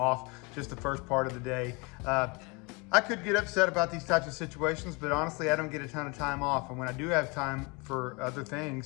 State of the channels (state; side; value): quieter; right; 28.9 dB